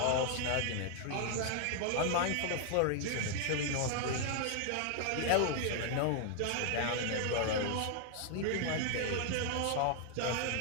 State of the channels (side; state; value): both; different; correlation 0.00